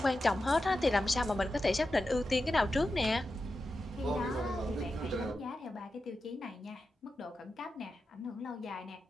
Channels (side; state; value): both; normal; correlation 0.91